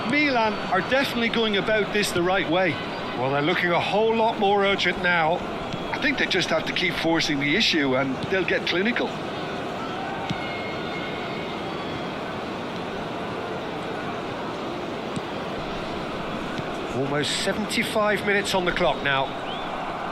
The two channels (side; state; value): both; identical; correlation 1.00